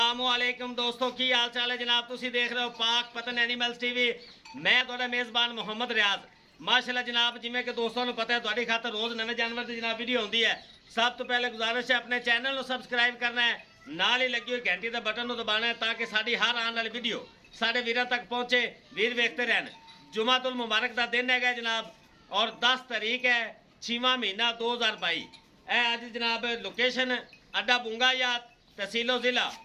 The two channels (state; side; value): identical; both; correlation 1.00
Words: दोस्तों की हाल चाल है जनाब। तुसी देख रहे हो पाक पतन एनिमल्स टीवी। मैं तुहाडा मेज़बान मुहम्मद रियाज। माशाल्लाह जनाब, जिमें कि दोस्तों को पता है तुहाडी खातर रोज़ नवे जानवर की जनाब वीडियो होती है। सब तो पहले गुजारिश है अपने चैनल को सबसक्राइब करना है, नाल ही लगी हुई घंटी का बटन दबाना है ताकि साड़ी हर आने वाली वीडियो साढ़े वीर तक पहुँचे, वीर वेखते रहन। जुमातुल मुबारक का दिन है जनाब और 10 तारीख है 6वां महीना 2022। अज जनाब लोकेशन अड्डा बुंगायात, तहसीलो ज़िला